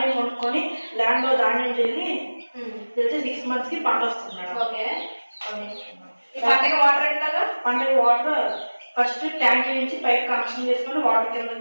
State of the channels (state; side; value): inverted; both; correlation -1.00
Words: కొనుక్కొని ల్యాండ్ లో ధాన్యం చేసి 6 months కి పంట వస్తుంది మేడం. పంటకి వాటర్ ఫస్ట్ ట్యాంక్ నుంచి పైప్ కనెక్షన్ చేసుకొని వాటర్